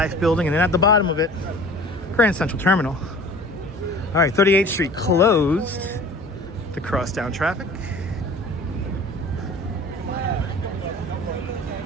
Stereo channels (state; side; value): normal; both; correlation 0.44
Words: building, and then at the bottom of it, Grand Central Terminal. All right, 38th Street closed to crosstown traffic.